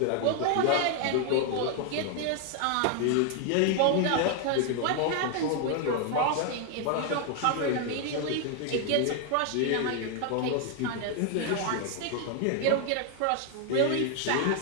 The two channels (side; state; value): both; different; correlation 0.00